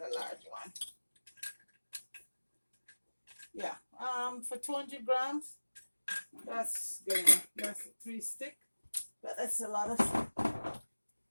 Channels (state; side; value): inverted; both; correlation -1.00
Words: large one. Yeah. For 200 grams, that's good enough. That's 3 sticks. But that's a lot of.